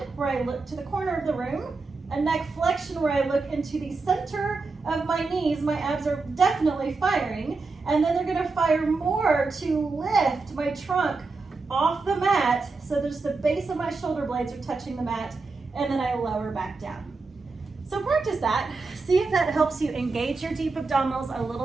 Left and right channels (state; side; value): quieter; left; 4.0 dB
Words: where I look to the corner of the room, a neck flexion where I look into the center of my knees. My abs are definitely firing, and then they're gonna fire more to lift my trunk off the mat so there's the base of my shoulder blades are touching the mat, and then I lower back down. So practice that. See if that helps you engage your deep abdominals a